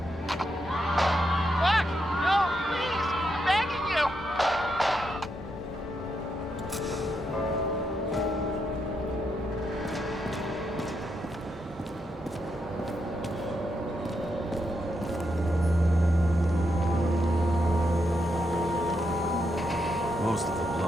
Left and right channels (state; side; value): normal; both; correlation 0.82